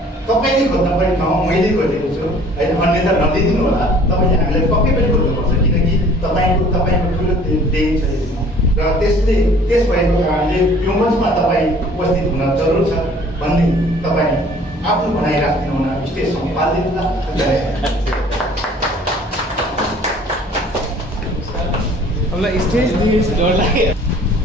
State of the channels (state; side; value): normal; both; correlation 0.52